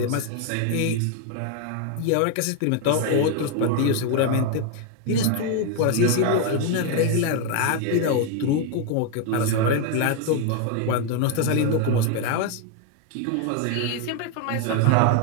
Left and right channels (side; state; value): both; different; correlation 0.01